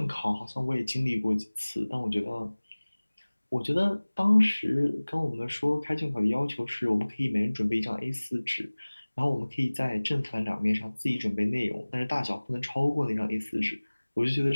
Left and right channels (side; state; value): both; inverted; correlation -1.00